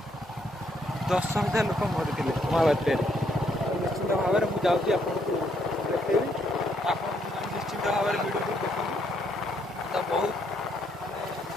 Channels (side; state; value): both; normal; correlation 0.72